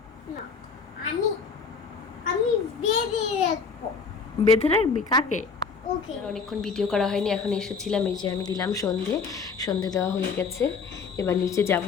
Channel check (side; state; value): right; quieter; 5.3 dB